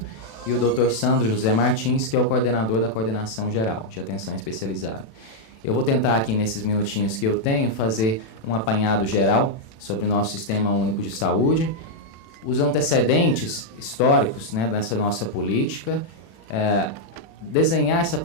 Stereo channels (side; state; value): right; late; 36 ms